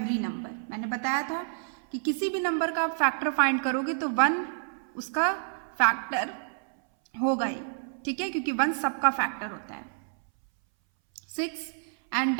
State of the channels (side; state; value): left; silent; 59 dB below the other